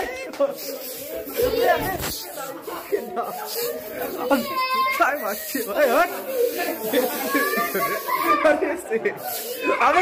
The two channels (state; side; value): identical; both; correlation 1.00